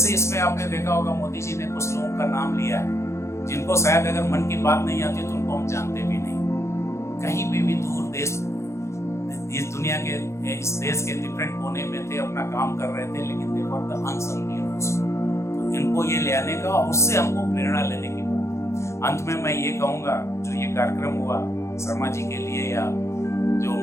इसमें आपने देखा होगा मोदी जी ने कुछ लोगों का नाम लिया है जिनको शायद अगर मन की बात नहीं आती तो उनको हम जानते भी नहीं, कहीं भी दूर देश इस दुनिया के इस देश के डिफरेंट कोने में थे, अपना काम कर रहे थे, लेकिन दे वर द अनसंग हीरोज। तो इनको ये ले आने का, उससे हमको प्रेरणा लेने की बात। अंत में मैं ये कहूँगा, जो ये कार्यक्रम हुआ शर्मा जी के लिए, या जो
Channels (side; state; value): right; late; 0.14 ms